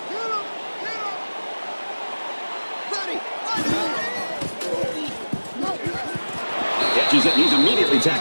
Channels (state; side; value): inverted; both; correlation -1.00